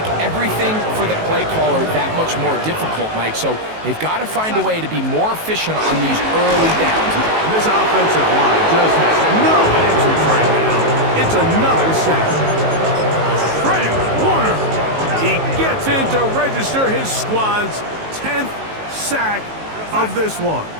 everything for the play caller that much more difficult, Mike. So they've got to find a way to be more efficient on these early downs. This offensive line just has no answers right now. It's another sack. Frank Warner. He gets in to register his squad's 10th sack of this one.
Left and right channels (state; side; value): late; left; 19 ms